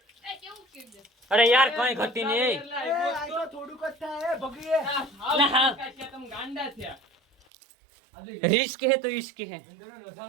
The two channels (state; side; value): drops out; left; at 7.5 s